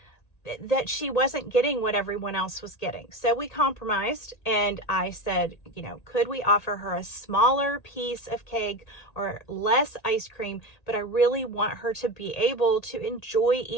that she wasn't getting what everyone else was getting. So we compromised, and I said, could we offer her a smaller piece of cake or less ice cream? But I really want her to be able to enjoy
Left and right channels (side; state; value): right; late; 1.8 ms